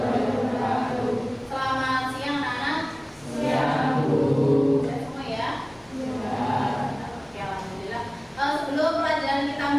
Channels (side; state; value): left; noise; rumble, 28 dB below the sound